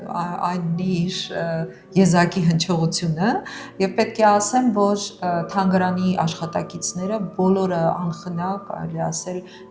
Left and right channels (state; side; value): identical; both; correlation 1.00